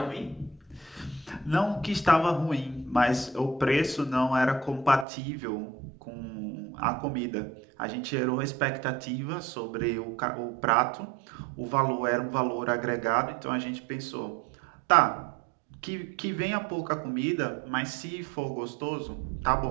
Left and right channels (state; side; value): drops out; left; at 5.1 s